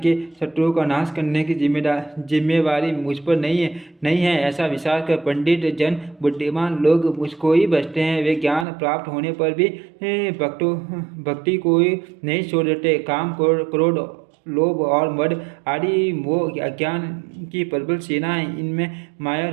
शत्रुओं का नाश करने की जिम्मेवारी मुझ पर नहीं है। ऐसा विचार कर पंडित जन बुद्धिमान लोग मुझको ही बचते हैं। वे ज्ञान प्राप्त होने पर भी भक्ति को ही नहीं छोड़ देते। काम क्रोध लोभ और मद आदि मोह अज्ञान की प्रबल सेनाएं, इनमें माया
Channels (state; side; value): drops out; left; at 8.7 s